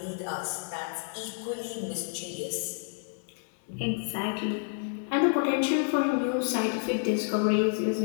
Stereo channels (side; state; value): right; silent; 58 dB below the other